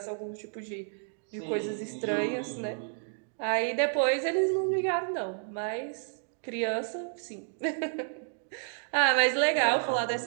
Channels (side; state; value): left; silent; 57 dB below the other